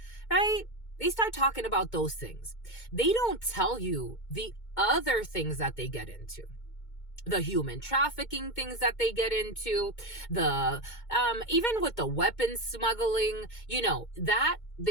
right? They start talking about those things. They don't tell you the other things that they get into, the human trafficking things that they get into, the even with the weapons smuggling, you know, that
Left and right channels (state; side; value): late; right; 2.2 ms